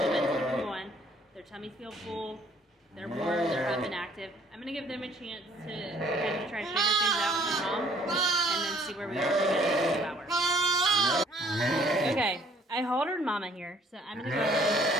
bit to keep going. Their tummies feel full. They're warm. They're up and active. I'm gonna give them a chance to kind of try to figure things out with their mom, and then see where we are in 2 hours. Okay, I haltered Mama here, so I'm gonna go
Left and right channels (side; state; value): both; normal; correlation 0.59